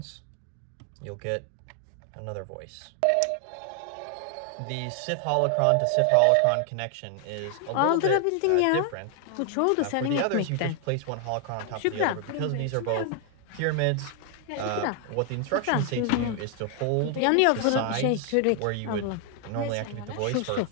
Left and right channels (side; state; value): both; different; correlation 0.00